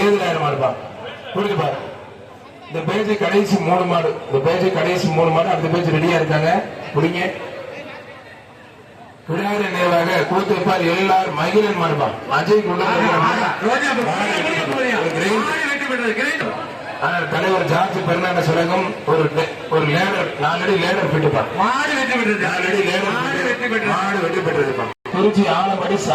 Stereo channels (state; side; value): identical; both; correlation 1.00